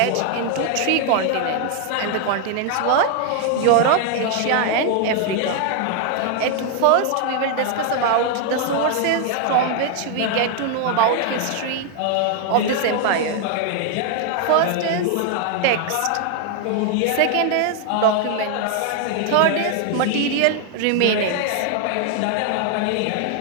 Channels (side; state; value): both; different; correlation 0.00